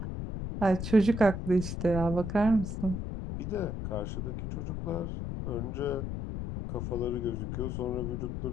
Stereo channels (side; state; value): left; noise; rumble, 4 dB below the sound